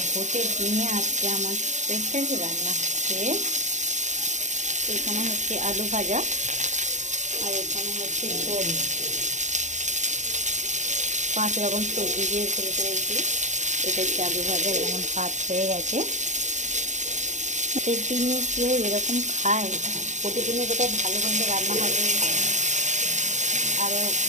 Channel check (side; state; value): left; late; 0.35 ms